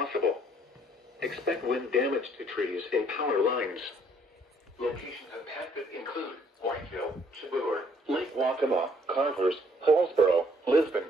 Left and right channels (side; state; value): both; normal; correlation 0.63